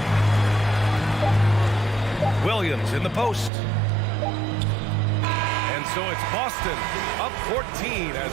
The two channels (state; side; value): drops out; left; at 3.5 s